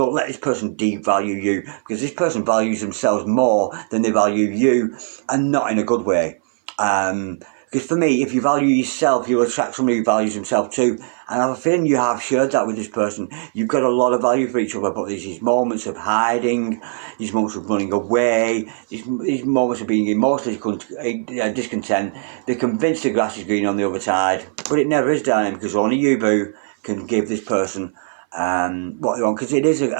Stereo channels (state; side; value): silent; left; 59 dB below the other